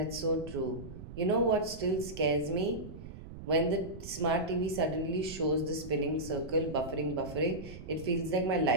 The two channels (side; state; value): right; noise; rumble, 13 dB below the sound